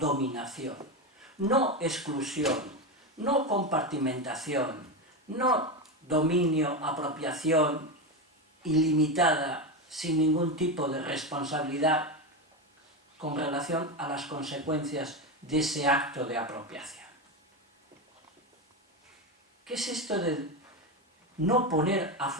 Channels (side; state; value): both; normal; correlation 0.15